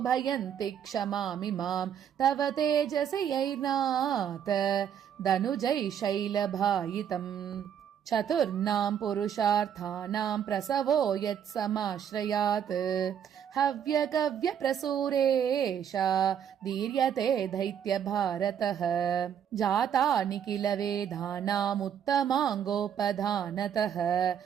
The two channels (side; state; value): left; quieter; 8.8 dB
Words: क्षमामिमाम् तव तेजसि यैर्नाथ दनुजै शैलभायितम् चतुर्णां पुरुषार्थानां प्रसवो यत्समाश्रयात् हव्यकव्यप्रसूरेषा दीर्यते दैत्यभारतः जातानि किल वेदानामुत्तमाङ्गोपधानतः